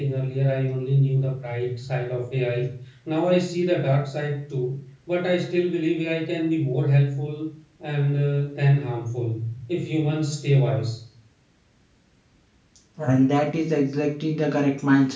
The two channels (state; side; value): identical; both; correlation 1.00